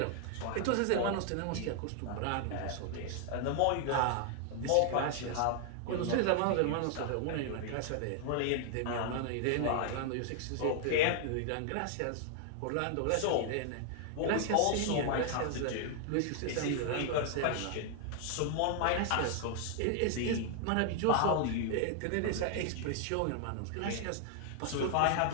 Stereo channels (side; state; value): both; different; correlation 0.00